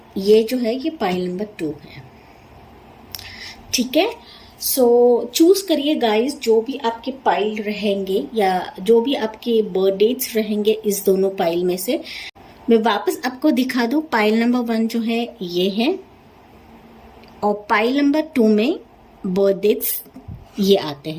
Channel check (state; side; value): identical; both; correlation 1.00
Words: ये जो है ये पाइल नंबर 2 है। ठीक है, सो चूज करिए गाइस, जो भी आपके पाइल रहेंगे या जो भी आपके बर्थ डेट्स रहेंगे इस दोनों पाइल में से। मैं वापस आपको दिखा दूं, पाइल नंबर 1 जो है ये है और पाइल नंबर 2 में बर्थ डेट्स ये आते